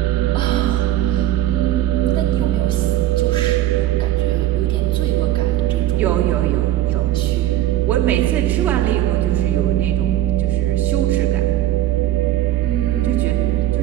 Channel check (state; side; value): quieter; left; 13.7 dB